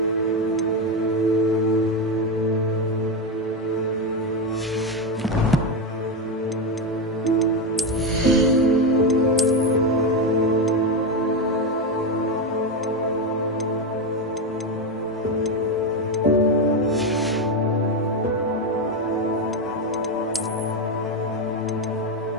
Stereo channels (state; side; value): normal; both; correlation 0.10